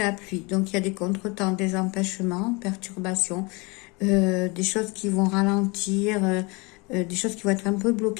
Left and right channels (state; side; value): quieter; right; 27.7 dB